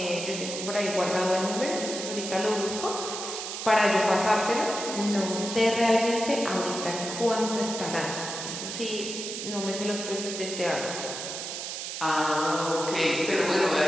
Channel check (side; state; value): right; noise; hiss, 6 dB below the sound